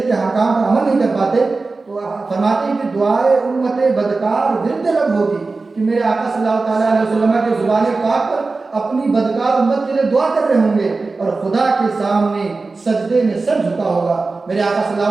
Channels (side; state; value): left; quieter; 3.8 dB